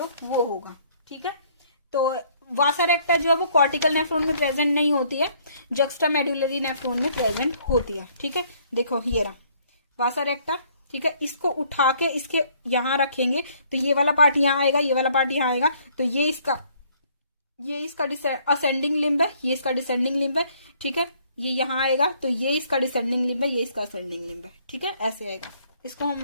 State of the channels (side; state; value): both; inverted; correlation -0.63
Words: वो होगा, ठीक है। तो वासा रेक्टा जो है वो कॉर्टिकल नेफ्रॉन में प्रेजेंट नहीं होती है, जक्स्टा मेडुलरी नेफ्रॉन में प्रेजेंट होती है, ठीक है। देखो ये रहा वासा रेक्टा, ठीक है, इसको उठा के इसके यहां रखेंगे तो ये वाला पार्ट यहां आएगा, ये वाला पार्ट यहां आएगा, तो ये इसका असेंडिंग लिम्ब है, ये इसका डिसेंडिंग लिम्ब है, ठीक है। ये यहां आएगा तो ये इसका डिसेंडिंग लिम्ब है, ये इसका असेंडिंग लिम्ब है, ठीक है, ऐसे आएगा। इसको